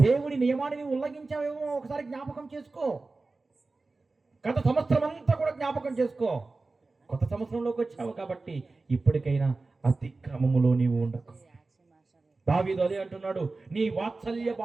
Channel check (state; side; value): quieter; left; 3.6 dB